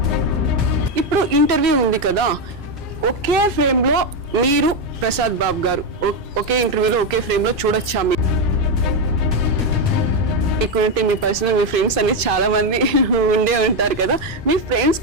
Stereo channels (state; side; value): normal; both; correlation 0.07